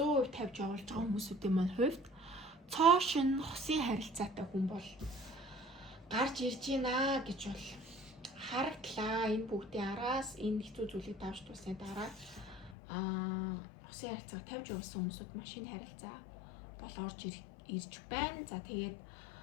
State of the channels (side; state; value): right; drops out; at 12.8 s